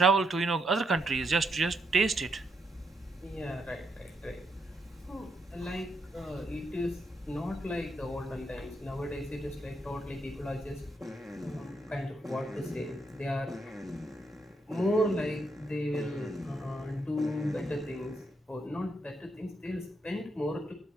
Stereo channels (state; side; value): normal; both; correlation 0.78